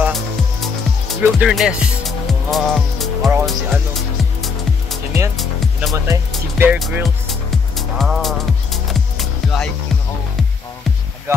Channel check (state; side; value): quieter; right; 5.3 dB